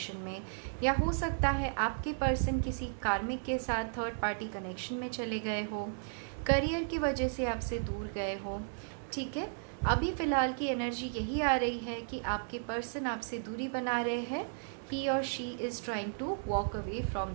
में, या हो सकता है आपके पर्सन किसी कार्मिक के साथ थर्ड पार्टी कनेक्शन में चले गए हो, करियर की वजह से आपसे दूर गए हो। ठीक है, अभी फ़िलहाल की एनर्जी यही आ रही है कि आपके पर्सन आपसे दूरी बना रहे हैं। ही और she is trying to walk away from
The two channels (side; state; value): left; silent; digital silence